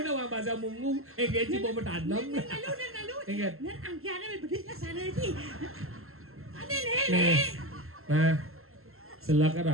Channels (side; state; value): left; late; 0.62 ms